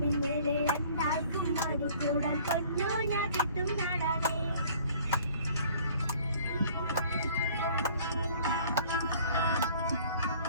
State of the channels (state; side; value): inverted; both; correlation -0.53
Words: രണ്ടാൾക്കും മാടിക്കൂടാൻ പൊന്നൂഞ്ഞാൽ കെട്ടും നാടാണ്.